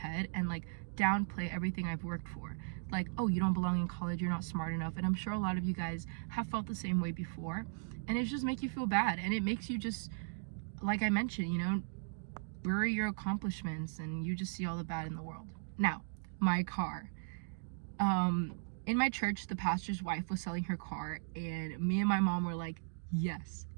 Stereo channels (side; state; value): left; silent; digital silence